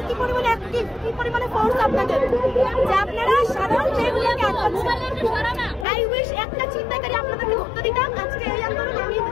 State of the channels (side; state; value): right; drops out; at 5.9 s